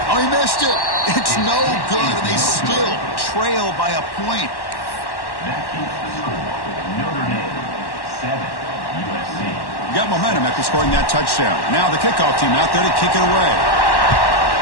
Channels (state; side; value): late; right; 1.1 ms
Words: Oh, he missed it. It's no good, and they still trail by a point. That keeps the score with Notre Dame 7, USC. Got momentum after scoring that touchdown. Now the kickoff team out there to kick it away.